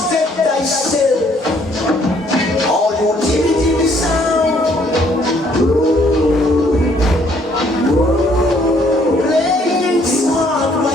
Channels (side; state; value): both; normal; correlation 0.65